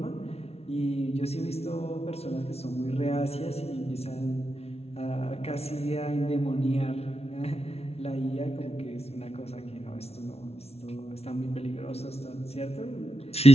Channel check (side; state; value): right; late; 0.30 ms